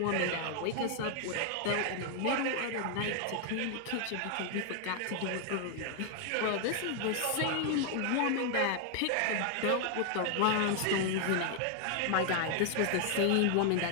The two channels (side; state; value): both; different; correlation 0.00